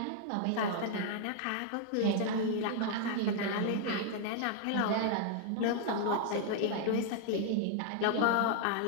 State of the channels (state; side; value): different; both; correlation 0.00